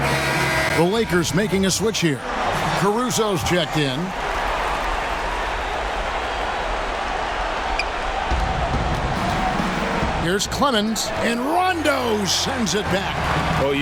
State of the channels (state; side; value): identical; both; correlation 1.00